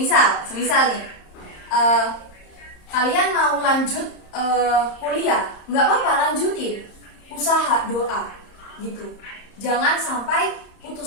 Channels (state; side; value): late; right; 30 ms